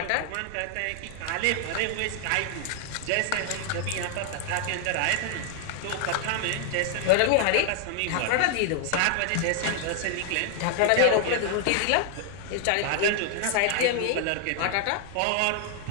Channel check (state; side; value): different; both; correlation 0.00